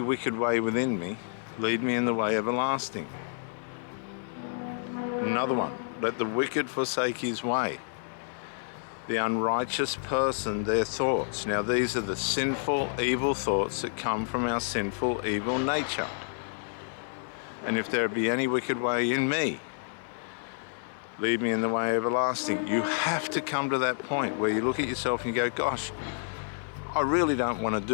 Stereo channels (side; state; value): right; silent; digital silence